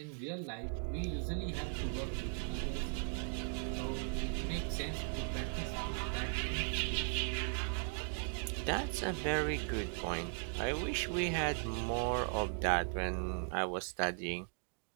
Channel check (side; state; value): left; silent; 52 dB below the other